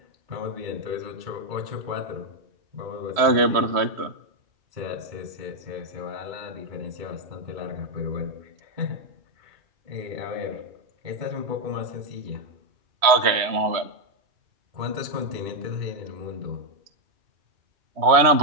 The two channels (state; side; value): late; left; 3.1 ms